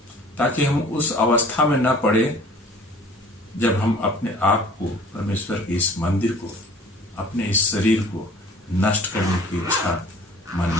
ताकि हम उस अवस्था में न पड़े जब हम अपने आप को, परमेश्वर के इस मंदिर को, अपने इस शरीर को नष्ट करने की इच्छा मन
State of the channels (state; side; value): normal; both; correlation 0.49